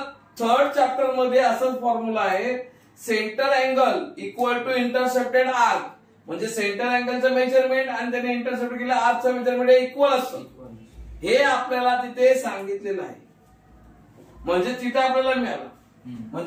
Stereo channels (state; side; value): identical; both; correlation 1.00